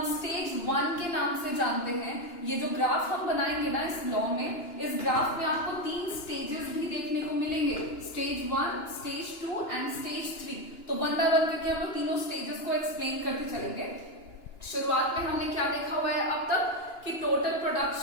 स्टेज 1 के नाम से जानते हैं। ये जो ग्राफ हम बनाएंगे ना इस लॉ में, इस ग्राफ में आपको 3 स्टेजेस भी देखने को मिलेंगे, स्टेज 1, स्टेज 2 एंड स्टेज 3। तो वन बाय वन करके हम लोग तीनों स्टेजेस को एक्सप्लेन करते चलेंगे। शुरुआत में हमने क्या देखा हुआ है अब तक कि टोटल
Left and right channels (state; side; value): late; right; 2.9 ms